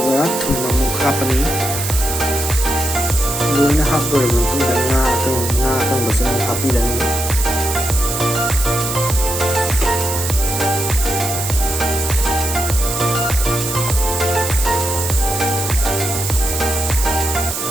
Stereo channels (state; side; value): noise; right; hiss, 5 dB below the sound